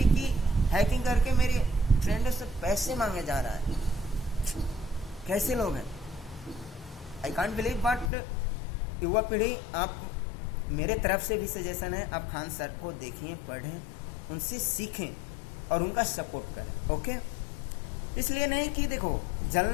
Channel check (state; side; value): drops out; right; at 8.1 s